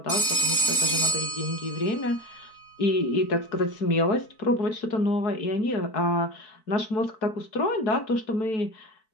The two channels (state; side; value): late; right; 4.6 ms